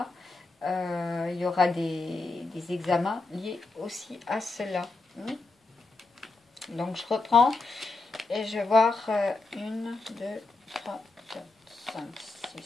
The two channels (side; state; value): right; quieter; 3.5 dB